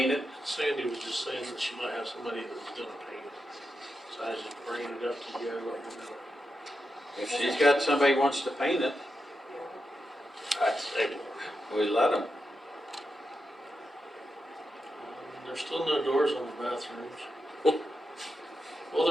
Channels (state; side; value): normal; both; correlation 0.87